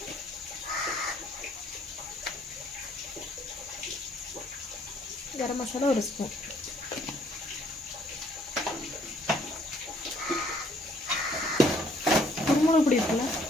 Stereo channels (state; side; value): normal; both; correlation 0.64